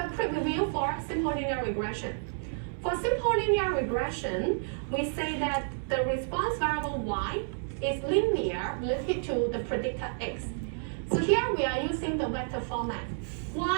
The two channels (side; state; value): left; silent; 58 dB below the other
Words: quick review for simple linear regression. For simple linear regression, we say that the response variable Y is linear related to the predictor X. So here we are using the vector format.